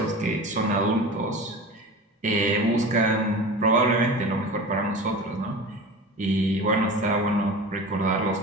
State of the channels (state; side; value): normal; both; correlation 0.33